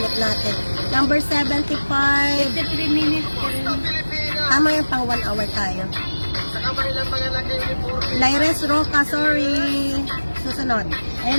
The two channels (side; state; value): both; inverted; correlation -1.00